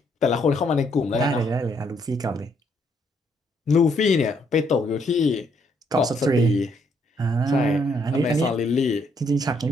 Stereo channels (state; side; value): normal; both; correlation 0.71